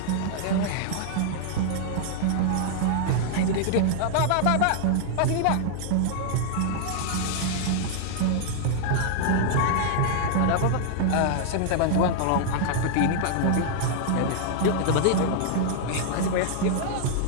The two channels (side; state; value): both; different; correlation -0.01